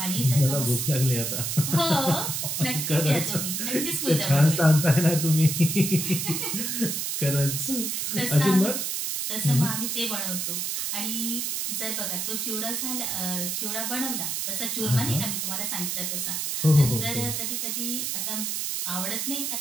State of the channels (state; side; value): noise; right; hiss, 1 dB below the sound